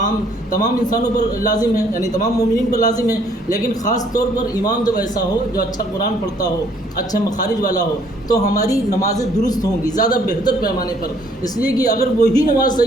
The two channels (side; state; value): both; normal; correlation 0.63